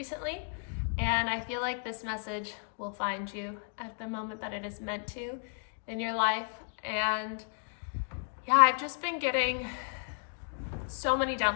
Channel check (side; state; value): right; silent; 56 dB below the other